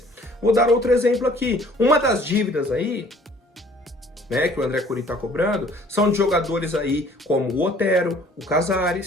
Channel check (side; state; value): both; normal; correlation 0.55